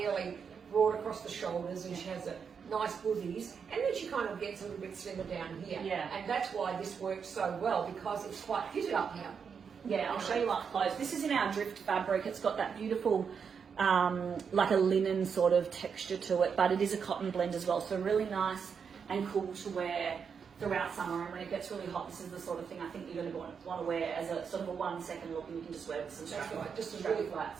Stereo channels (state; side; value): quieter; left; 6.5 dB